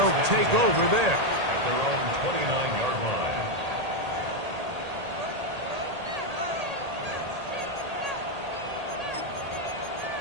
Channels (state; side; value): late; left; 1.8 ms